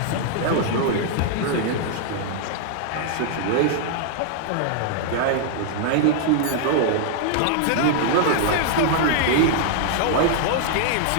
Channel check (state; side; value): different; both; correlation -0.01